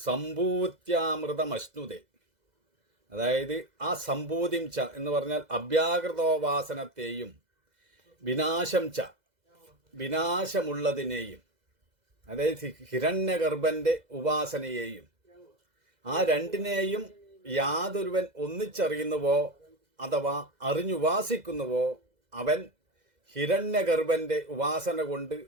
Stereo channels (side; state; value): left; late; 2.0 ms